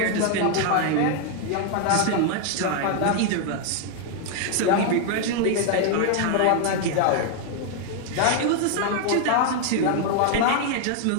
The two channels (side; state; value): both; different; correlation 0.00